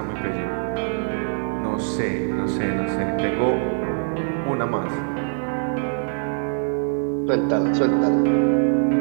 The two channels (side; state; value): left; silent; digital silence